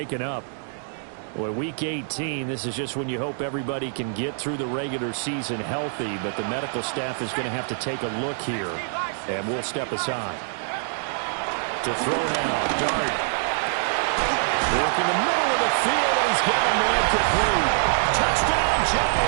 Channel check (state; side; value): silent; left; digital silence